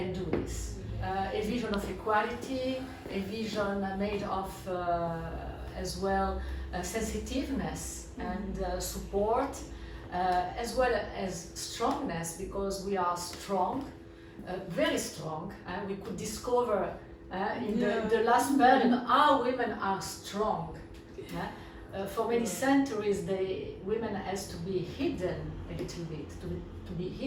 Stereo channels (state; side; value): identical; both; correlation 1.00